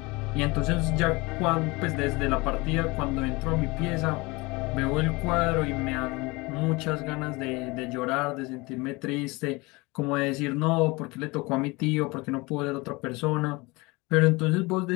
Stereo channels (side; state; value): right; quieter; 24.4 dB